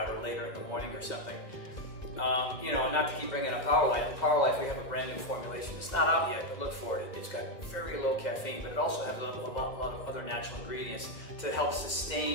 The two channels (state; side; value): late; right; 1.6 ms